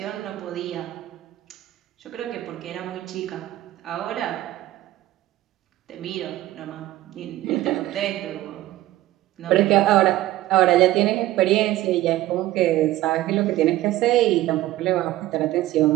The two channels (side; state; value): left; quieter; 15.4 dB